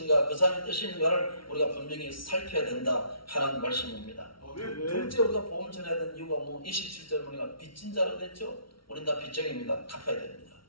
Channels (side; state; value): right; late; 0.74 ms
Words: 그 사람의 뜻이 있는가를 우리가 분명히 살펴야 된다 하는 말씀입니다. 둘째 우리가 복음 전해야 되는 이유가 27절 보니까 빚진 자로 됐죠. 우린 다 빚쟁입니다. 갚아야 됩니다.